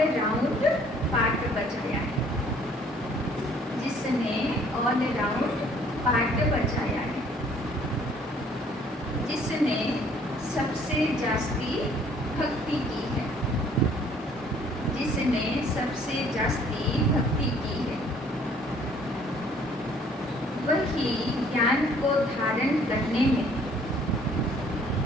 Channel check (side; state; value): both; normal; correlation 0.59